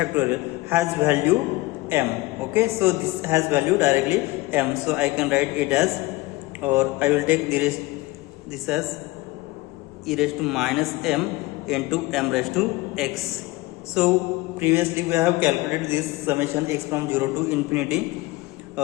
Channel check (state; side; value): quieter; right; 20.8 dB